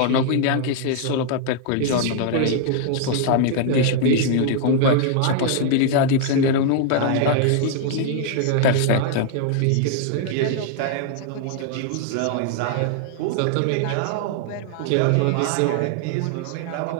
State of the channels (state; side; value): different; both; correlation 0.00